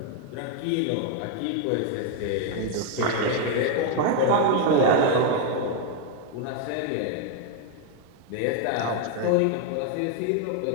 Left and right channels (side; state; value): both; different; correlation 0.00